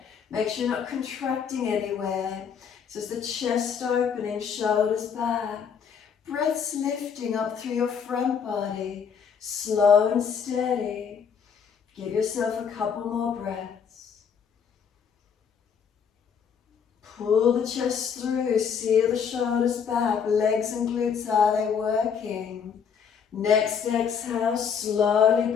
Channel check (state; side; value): quieter; right; 7.0 dB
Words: Make sure you're not contracting anywhere. So it's the chest opening, shoulders back. Breaths lifting up through your front body, slow and steady. Give yourself a couple more breaths. Pull the chest through, seal the shoulders back, legs and glutes, are they working? Next exhale, slowly